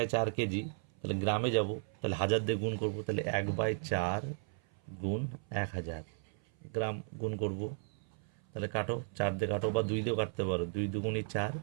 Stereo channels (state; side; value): silent; left; 54 dB below the other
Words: কেজি, তাহলে গ্রামে যাব, তাহলে 1000 দিয়ে গুণ করব। তাহলে 1/4 গুণ 1000 গ্রাম গুণ করব। তাহলে কাটো, 4 দিয়ে কাটো বা 2 দিয়েও কাটতে পারো, 2 দুগুণি 4।